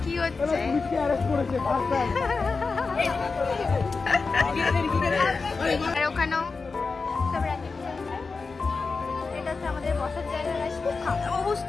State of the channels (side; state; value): right; quieter; 4.4 dB